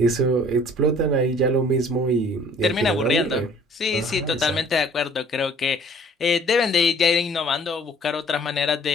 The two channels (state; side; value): normal; both; correlation 0.54